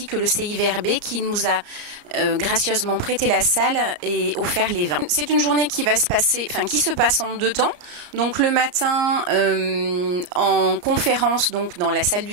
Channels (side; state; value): left; late; 34 ms